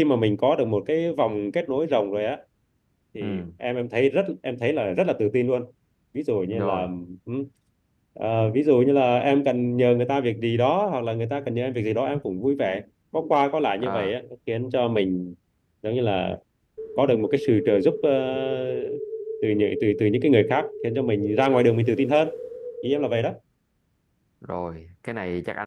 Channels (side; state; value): both; identical; correlation 1.00